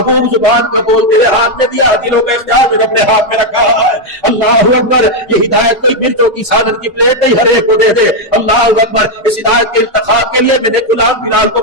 زبان کا بول تیرے ہاتھ میں دیا، دلوں کا اختیار میں اپنے ہاتھ میں رکھا ہے. اللہ اکبر یہ ہدایت کوئی مرچوں کی سالن کی پلیٹ نہیں ہر ایک کو دے دے. اللہ اکبر اس ہدایت کے انتخاب کے لیے میں نے غلام بلال کو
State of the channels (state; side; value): normal; both; correlation 0.02